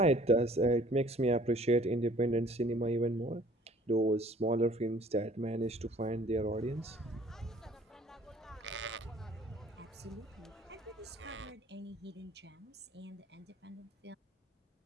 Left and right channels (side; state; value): both; normal; correlation 0.53